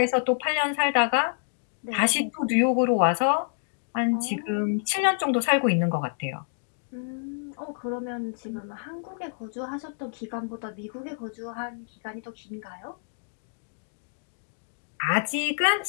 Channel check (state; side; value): silent; right; digital silence